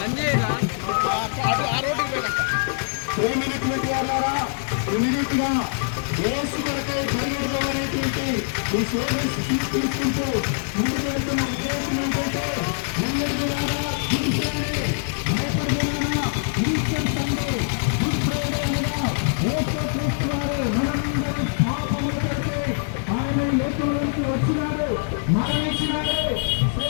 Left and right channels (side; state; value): right; silent; 62 dB below the other